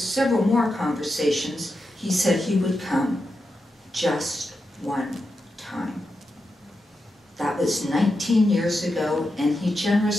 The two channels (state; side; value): normal; both; correlation 0.88